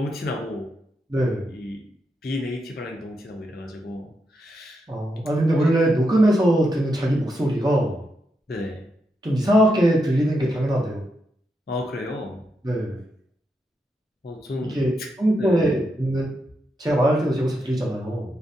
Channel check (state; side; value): normal; both; correlation 0.83